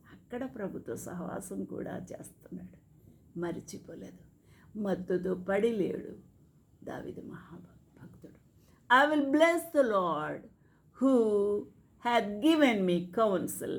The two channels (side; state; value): both; identical; correlation 1.00